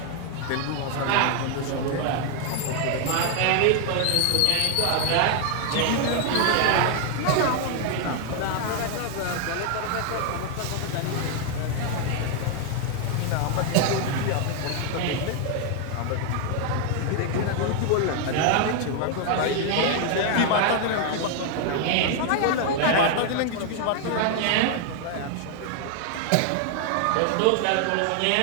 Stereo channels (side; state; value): both; different; correlation 0.00